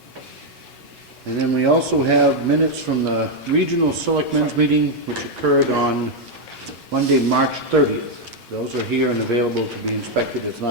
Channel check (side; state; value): both; normal; correlation 0.01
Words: And then we also have minutes from the Regional Selectmen's meeting, which occurred on Monday, March 30th. Those are here and available to be inspected. It's